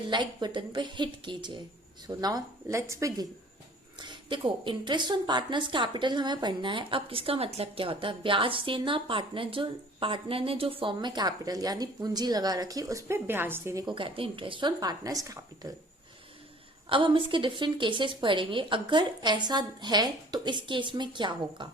लाइक बटन पे हिट कीजिए। So now let's begin. देखो, इंटरेस्ट ऑन पार्टनर्स कैपिटल हमें पढ़ना है। अब इसका मतलब क्या होता है? ब्याज देना। पार्टनर ने जो फर्म में कैपिटल यानी पूंजी लगा रखी, उस पर ब्याज देने को कहते हैं इंटरेस्ट ऑन पार्टनर्स कैपिटल। अब हम इसके डिफरेंट केसेस पढ़ेंगे। अगर ऐसा है तो इस केस में क्या होगा।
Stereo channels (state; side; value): normal; both; correlation 0.50